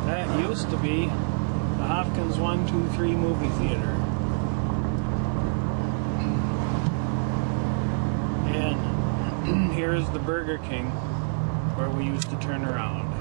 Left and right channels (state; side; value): silent; left; 61 dB below the other